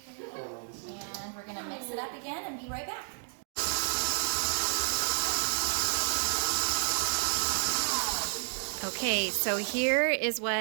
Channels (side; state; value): left; silent; 57 dB below the other